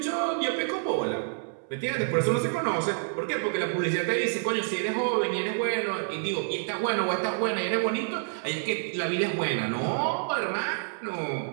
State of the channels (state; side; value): silent; left; 59 dB below the other